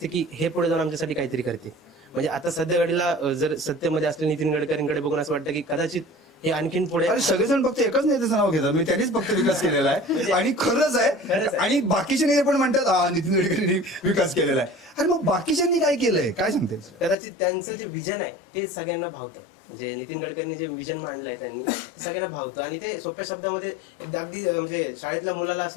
की हे पुढे जाऊन आमच्यासाठी काहीतरी करते. म्हणजे आता सध्या घडीला जर सत्तेमध्ये असले नितीन गडकरींकडे बघून असं वाटतं की कदाचित हे आणखीन पुढे. अरे सगळेजण फक्त एकच नेत्याचं नाव घेतात, मी त्यांनीच फक्त विकास केलेला आहे. आणि खरंच आहे. आणि बाकीचे नेते पण म्हणतात नितीन गडकरींनी विकास केलेला आहे. अरे मग बाकीच्यांनी काय केलंय, काय सांगते? कदाचित त्यांचं जे विजन आहे ते सगळ्यांना भावतं. म्हणजे नितीन गडकरींनी जे विजन मांडलंय त्यांनी ते सगळ्यांना भावतं. आणि ते सोप्या शब्दामध्ये अगदी म्हणजे शाळेतल्या मुलाला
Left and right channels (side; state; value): right; drops out; at 17.2 s